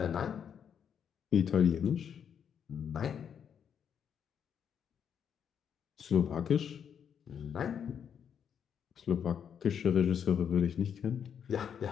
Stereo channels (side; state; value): right; quieter; 8.0 dB